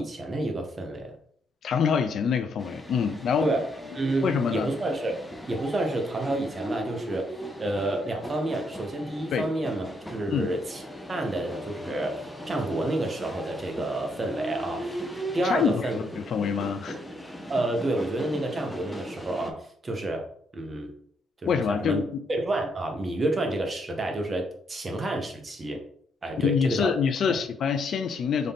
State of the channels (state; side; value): normal; both; correlation 0.74